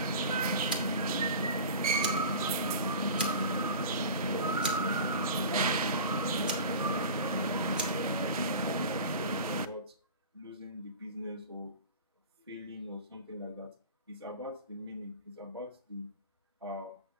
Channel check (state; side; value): inverted; both; correlation -0.36